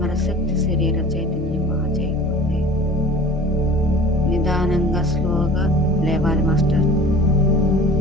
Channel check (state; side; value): normal; both; correlation 0.43